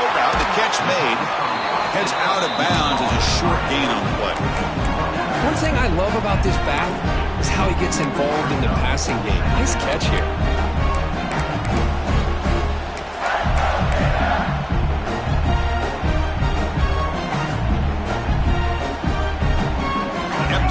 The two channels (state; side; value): identical; both; correlation 1.00